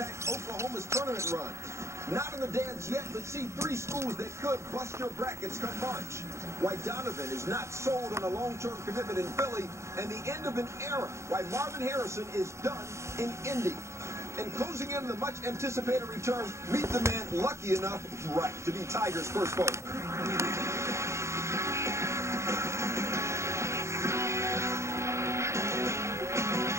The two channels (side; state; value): left; late; 0.14 ms